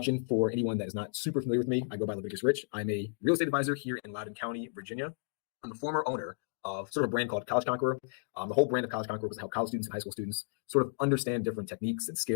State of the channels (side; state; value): right; silent; digital silence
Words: for anyone that is not super familiar with me. I go by Leviticus Rich. I'm a real estate advisor here in Loudoun County, Virginia. I'm the former owner of sort of a brand called College Conqueror. The whole brand of College Conqueror was to help college students and high school students sort of understand different techniques and